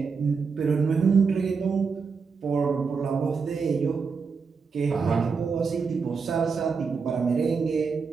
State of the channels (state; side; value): quieter; left; 5.3 dB